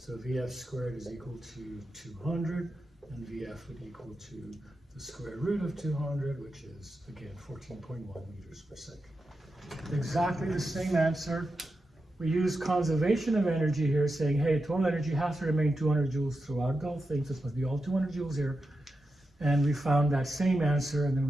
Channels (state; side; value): normal; both; correlation 0.89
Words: So VF squared is equal to 200, and VF would equal to the square root of 200, which is, again, 14.1 meters per second. Exactly the same answer. We use conservation of energy here, saying, hey, total energy has to remain 200 joules throughout the whole thing, so this must be all 200 joules here. And we found that same answer, and then